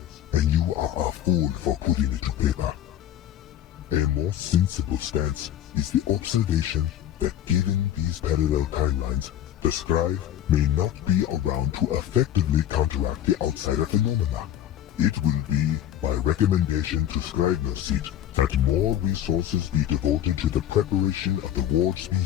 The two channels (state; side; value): quieter; right; 11.4 dB